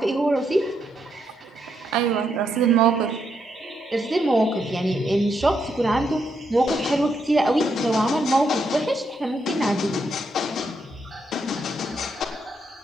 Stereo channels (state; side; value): normal; both; correlation 0.79